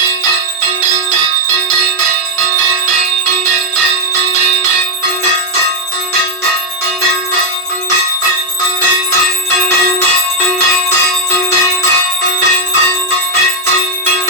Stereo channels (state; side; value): normal; both; correlation 0.01